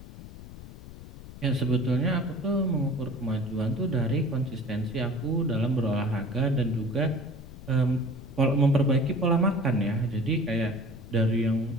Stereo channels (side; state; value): left; noise; rumble, 15 dB below the sound